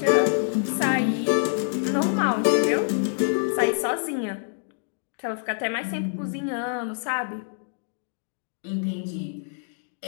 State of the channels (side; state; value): right; silent; digital silence